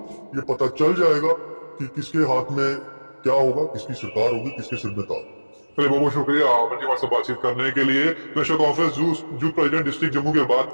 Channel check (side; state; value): both; inverted; correlation -1.00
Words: ये पता चल जाएगा कि किसके हाथ में क्या होगा, किसकी सरकार होगी, किसके सिर में ताज। चलिए बहुत बहुत शुक्रिया अमन जी हमारे साथ बातचीत करने के लिए। National conference youth president district Jammu की बात